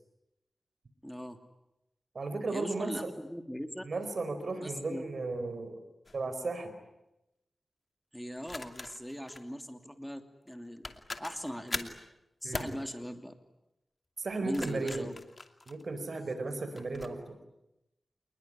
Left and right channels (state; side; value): normal; both; correlation 0.94